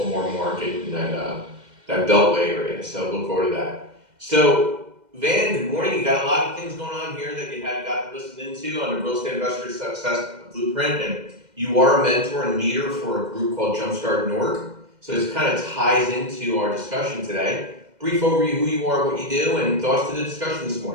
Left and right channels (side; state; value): left; late; 2.0 ms